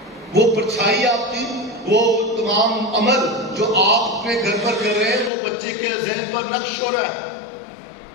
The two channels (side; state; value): right; drops out; at 5.3 s